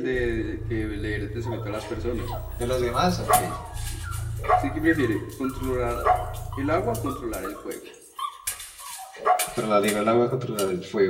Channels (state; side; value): identical; both; correlation 1.00